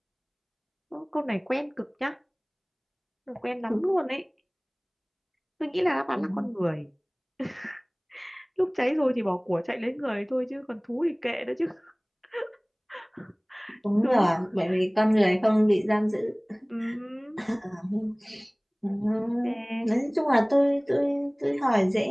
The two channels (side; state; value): both; identical; correlation 1.00